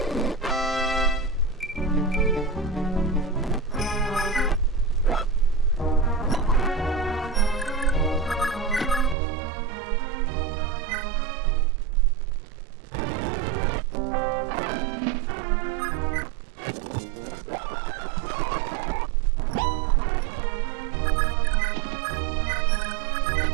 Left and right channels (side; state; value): left; drops out; at 9.2 s